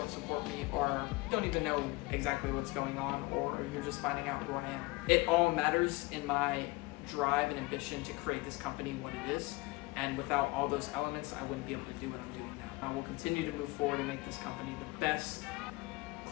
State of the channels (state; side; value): quieter; right; 23.0 dB